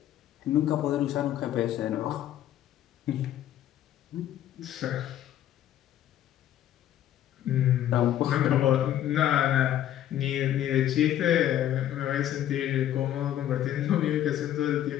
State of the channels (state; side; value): quieter; right; 11.8 dB